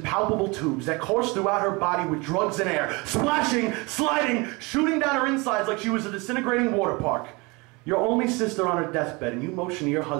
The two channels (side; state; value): left; quieter; 26.5 dB